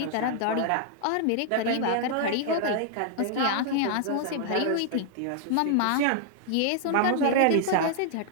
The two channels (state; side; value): different; both; correlation 0.00